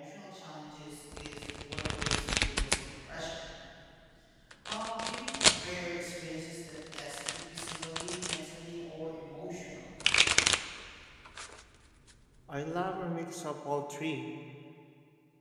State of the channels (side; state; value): both; identical; correlation 1.00